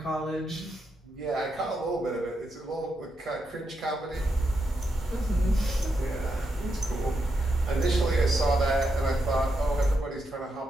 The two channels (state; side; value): normal; both; correlation 0.83